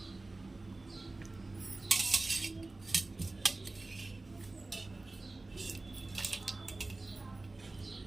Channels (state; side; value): quieter; left; 3.1 dB